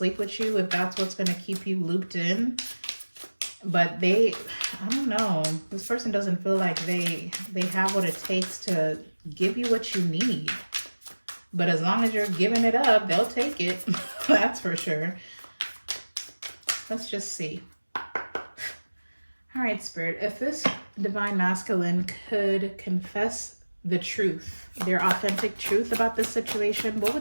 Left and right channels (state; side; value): inverted; both; correlation -1.00